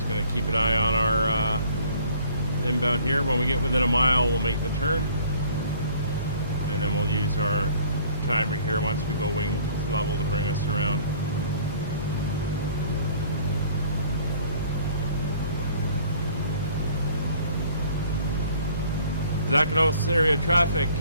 going to keep an eye on our inbound here. When we get within a mile, we'll make the turn. And then we'll use our timer here once we go wing level to bring us around. Zakynthos area traffic,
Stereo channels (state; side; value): inverted; both; correlation -0.55